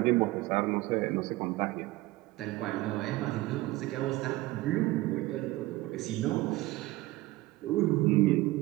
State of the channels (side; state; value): left; quieter; 19.2 dB